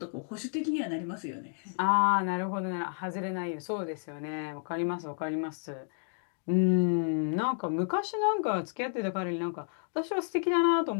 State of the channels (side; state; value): right; silent; digital silence